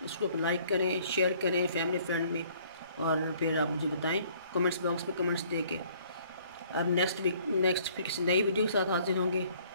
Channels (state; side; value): inverted; both; correlation -0.59